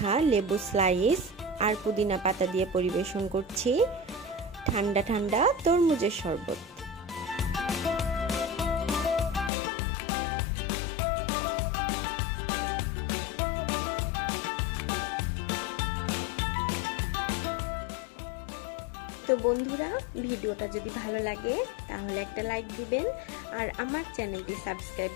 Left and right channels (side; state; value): right; drops out; at 9.5 s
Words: লেবু স্লাইস আর পুদিনা পাতা দিয়ে পরিবেশন করছি ঠান্ডা ঠান্ডা তরমুজের শরবত। তো বন্ধুরা, ভিডিওটা যদি ভালো লাগে তাহলে একটা লাইক দিবেন আর আমার চ্যানেলটি সাবস্ক্রাইব